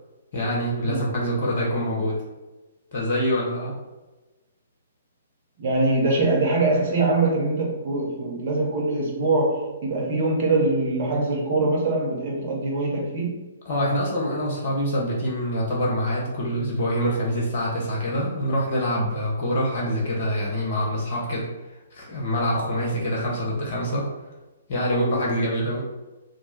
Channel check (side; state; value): both; inverted; correlation -0.49